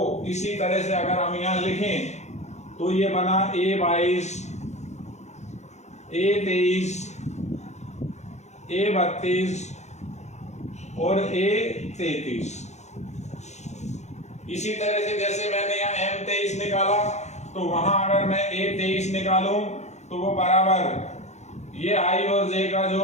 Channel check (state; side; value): late; right; 0.33 ms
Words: इसी तरह से अगर हम यहाँ लिखें तो ये बना A22, A23, A32 और A33। इसी तरह से जैसे मैंने यहाँ M23 निकाला तो वहां अगर मैं A23 निकालूं तो वो बराबर ये i और j का